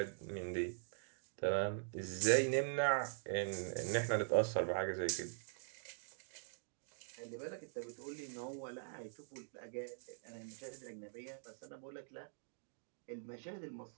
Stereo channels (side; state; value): left; silent; digital silence